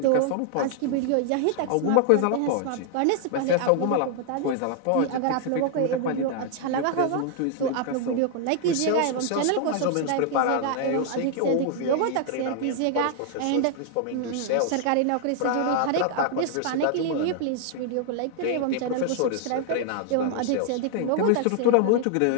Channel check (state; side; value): different; both; correlation 0.00